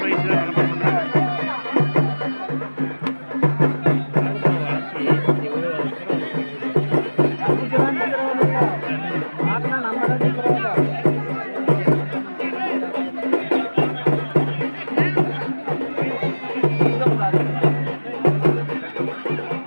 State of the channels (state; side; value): inverted; both; correlation -1.00